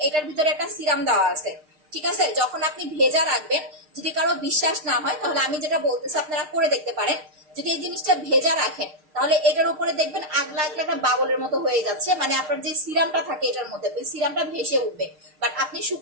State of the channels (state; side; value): late; left; 6.5 ms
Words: এটার ভিতরে একটা সিরাম দেওয়া আছে, ঠিক আছে। যখন আপনি ভেজা রাখবেন, যদি কারো বিশ্বাস না হয় তাহলে আমি যেটা বলতেছি আপনারা করে দেখতে পারেন। যদি এই জিনিসটা ভেজা রাখেন তাহলে এটার উপরে দেখবেন আগলা আগলা একটা বাবলের মতো হয়ে যাচ্ছে, মানে আপনার যে সিরামটা থাকে এটার মধ্যে ওই সিরামটা ভেসে উঠবে। বাট আপনি